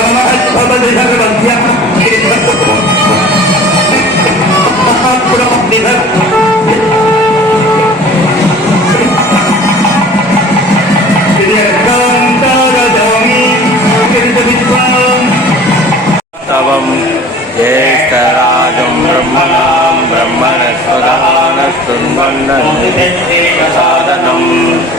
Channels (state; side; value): normal; both; correlation 0.45